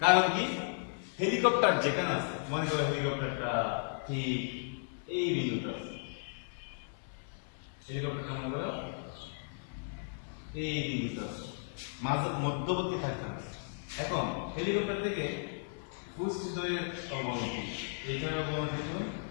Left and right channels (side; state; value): right; silent; 55 dB below the other